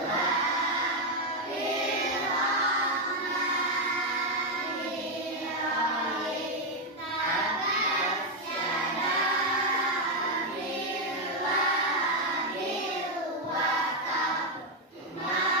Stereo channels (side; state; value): both; normal; correlation 0.03